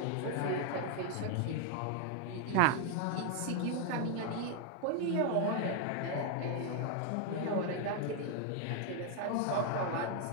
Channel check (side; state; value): both; different; correlation 0.00